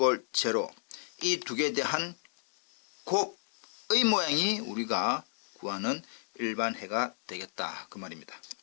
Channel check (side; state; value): right; silent; digital silence